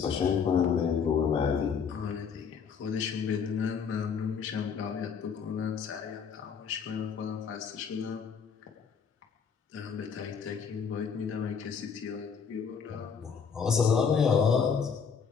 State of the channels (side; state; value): right; quieter; 6.5 dB